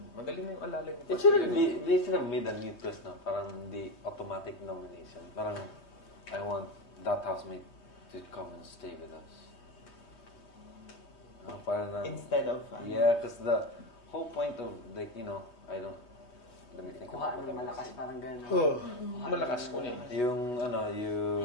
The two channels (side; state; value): right; late; 3.2 ms